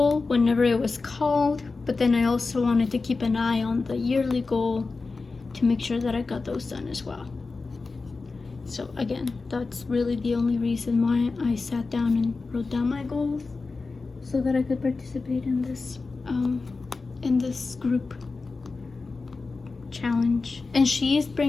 whenever it was called, but then I also wanted to keep an eye on the yearly goal to make sure that I got those done as well. So again, that's really the only reason why I sat down and wrote down my goals, so that I could participate in this group challenge. And she is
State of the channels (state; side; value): quieter; right; 4.0 dB